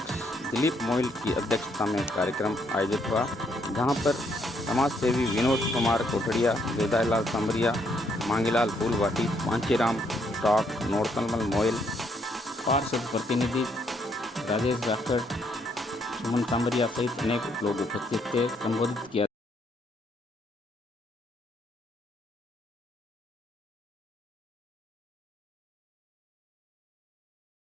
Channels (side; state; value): both; normal; correlation 0.72